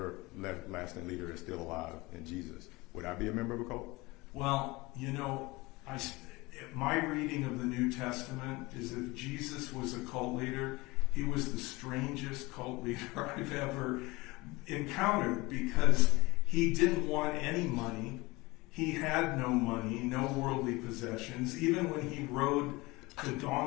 leader that's still alive in Jesus. Would I be a member of a cult? Well, you know, my reading of the New Testament is if Jesus was a cult leader, he was the strangest cult leader I've ever encountered, because he didn't want any money. He had no money, no worldly possessions. Even when he rode the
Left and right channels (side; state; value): right; quieter; 22.7 dB